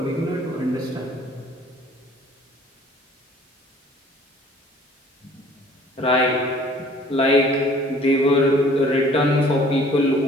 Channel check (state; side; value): normal; both; correlation 0.54